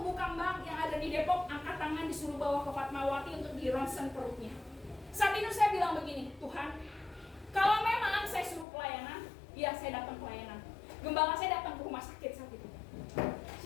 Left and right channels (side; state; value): right; drops out; at 8.7 s